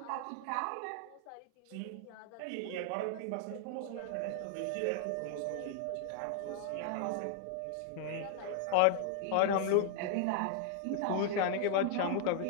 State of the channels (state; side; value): different; both; correlation 0.00